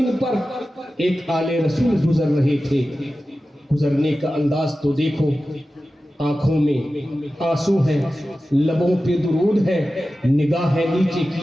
پر ایک آل رسول گزر رہے تھے، گزرنے کا انداز تو دیکھو، آنکھوں میں آنسو ہے، لبوں پہ درود ہے، نگاہیں نیچے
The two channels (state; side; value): normal; both; correlation 0.94